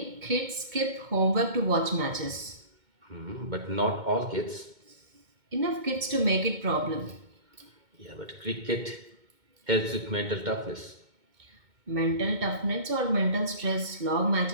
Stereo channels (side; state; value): left; late; 2.2 ms